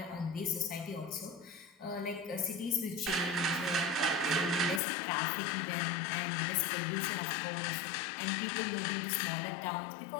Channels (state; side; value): drops out; right; at 4.8 s